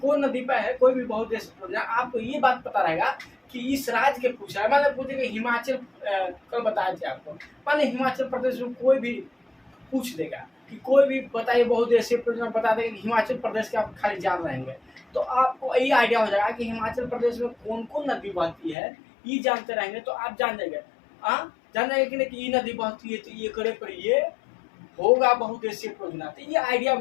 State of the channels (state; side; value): drops out; right; at 18.8 s